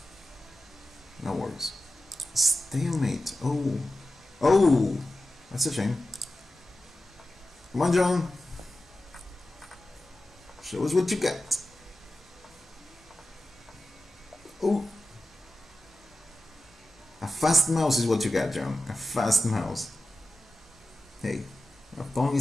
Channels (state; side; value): normal; both; correlation 0.93